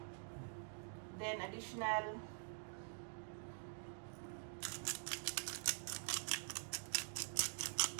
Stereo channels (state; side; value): silent; left; digital silence